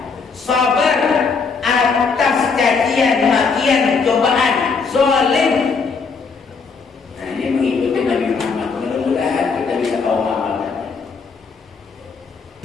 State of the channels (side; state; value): right; quieter; 5.0 dB